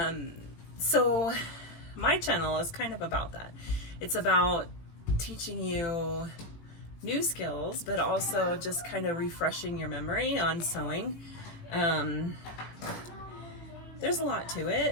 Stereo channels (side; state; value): right; late; 18 ms